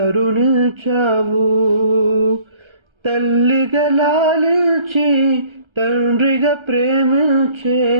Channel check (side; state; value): left; late; 1.3 ms